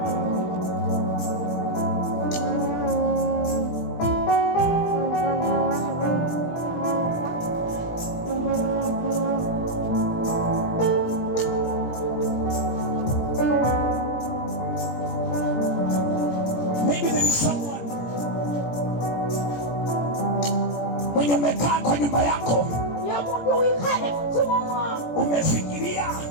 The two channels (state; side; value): late; right; 17 ms